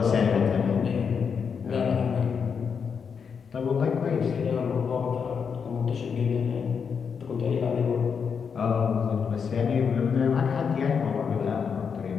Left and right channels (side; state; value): right; quieter; 6.4 dB